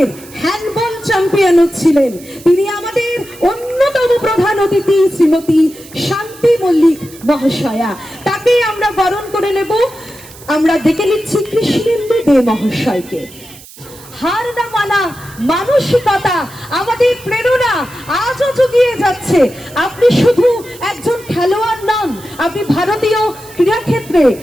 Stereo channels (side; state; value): right; noise; hiss, 20 dB below the sound